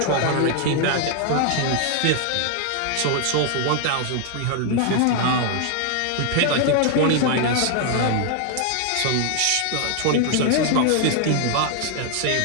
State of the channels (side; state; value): both; different; correlation 0.00